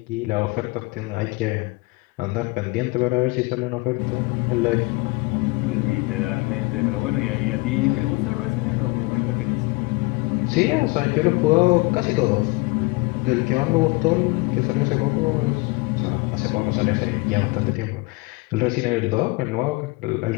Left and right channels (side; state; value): right; quieter; 24.7 dB